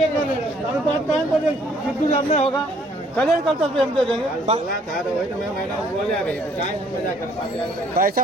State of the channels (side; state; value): both; normal; correlation 0.63